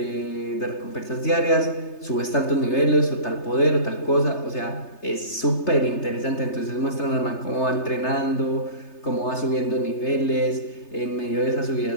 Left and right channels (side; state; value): right; late; 3.3 ms